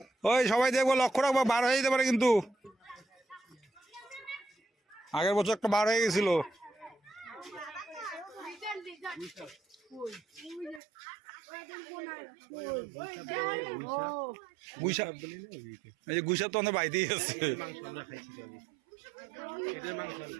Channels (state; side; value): drops out; left; at 10.8 s